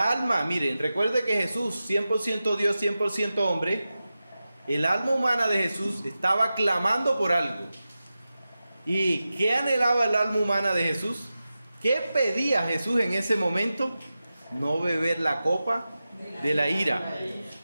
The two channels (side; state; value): both; inverted; correlation -0.93